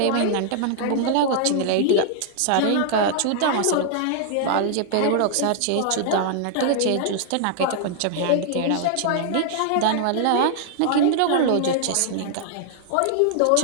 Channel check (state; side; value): different; both; correlation -0.01